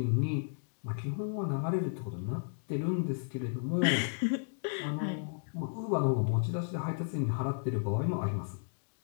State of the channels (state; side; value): silent; right; digital silence